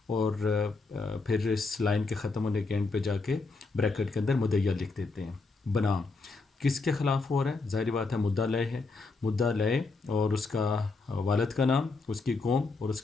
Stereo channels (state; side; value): quieter; right; 3.9 dB